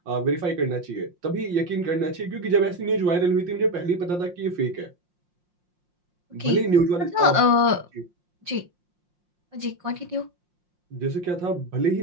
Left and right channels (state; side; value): late; left; 5.6 ms